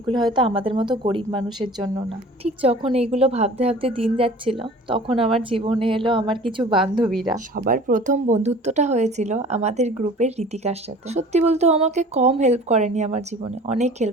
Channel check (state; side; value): normal; both; correlation 0.45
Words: হয়তো আমাদের মতো গরিব মানুষের জন্য না। ঠিক যখন এইগুলো ভাবতে ভাবতে দিন যাচ্ছিল, তখন আমার জীবনে এলো আমার কিছু বান্ধবীরা। সবার প্রথম বন্ধুত্বটা হয়েছিল আমাদের গ্রুপের ঋতিকার সাথে। সত্যি বলতে ও আমাকে কম হেল্প করেনি, আমার জীবনে অনেক